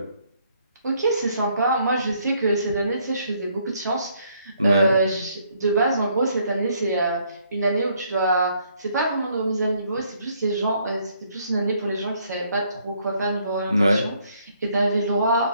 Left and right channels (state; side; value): inverted; both; correlation -0.68